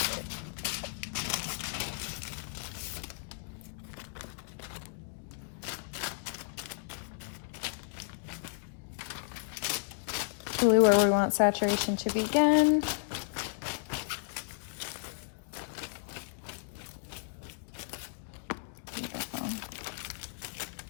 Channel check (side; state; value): right; silent; digital silence